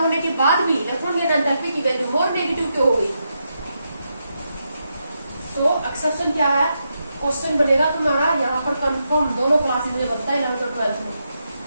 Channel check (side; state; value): both; inverted; correlation -0.84